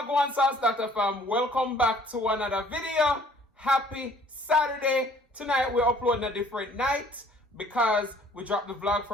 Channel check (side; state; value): both; normal; correlation 0.57